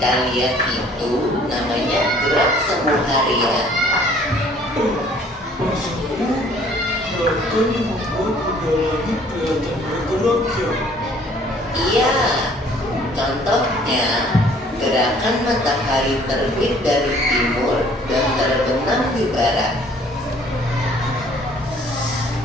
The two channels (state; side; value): normal; both; correlation 0.57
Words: lihat itu namanya gerak semu harian. Maksudmu, gerakan yang membuat benda langit kelihatan bergerak ya? Iya, contohnya gerakan matahari terbit dari timur dan terbenam di barat.